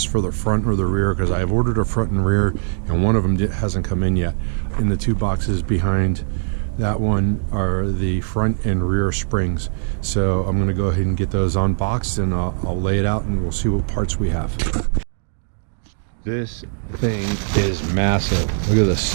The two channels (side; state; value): left; silent; digital silence